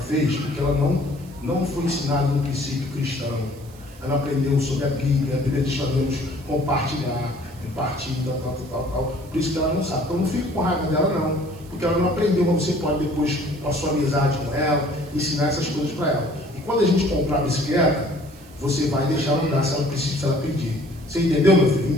porque ela não foi ensinada no princípio cristão. Ela aprendeu sobre a Bíblia diz que devemos compartilhar, repartir, tal. Por isso que ela não sabe. Então não fique com raiva dela, não. Porque ela não aprendeu, mas você pode depois, com a sua amizade com ela, ensinar essas coisas para ela. E quando a gente comprar a bicicleta, você vai deixar ela andar se ela precisa, se ela pedir. Você entendeu, meu filho?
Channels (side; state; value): right; noise; hiss, 24 dB below the sound